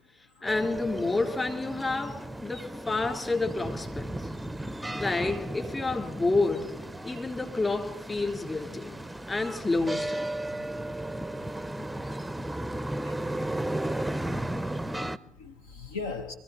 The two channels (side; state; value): both; normal; correlation 0.92